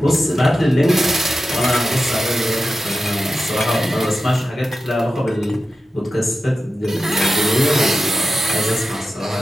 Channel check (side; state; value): both; normal; correlation 0.91